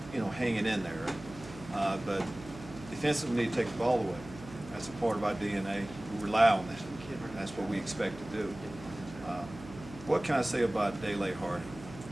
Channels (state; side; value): noise; right; hum, 15 dB below the sound